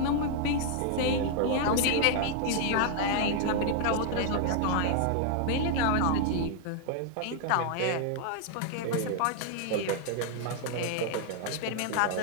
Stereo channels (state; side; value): different; both; correlation 0.00